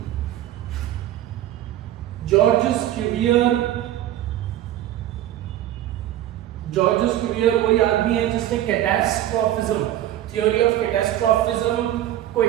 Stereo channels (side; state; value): left; quieter; 12.8 dB